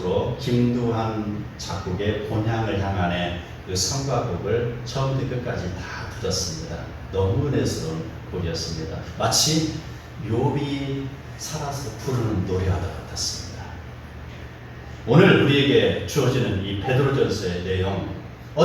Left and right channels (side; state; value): both; identical; correlation 1.00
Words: 김두한 작곡의 본향을 향한의 그 성가곡을 처음부터 끝까지 다 들었습니다. 너무 은혜스러운 곡이었습니다. 마치 욥이 살아서 부르는 노래와 같았습니다. 오늘 우리에게 주어지는 이 베드로전서의 내용,